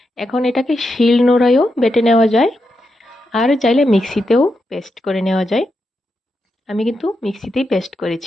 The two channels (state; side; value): normal; both; correlation 0.85